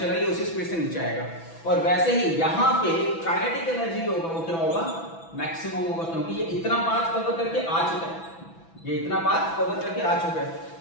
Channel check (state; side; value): late; right; 6.0 ms